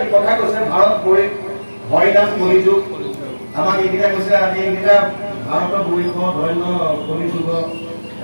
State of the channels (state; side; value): inverted; both; correlation -1.00